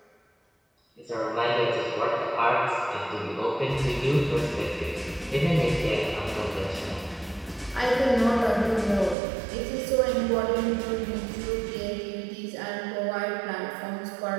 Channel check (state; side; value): drops out; left; at 9.2 s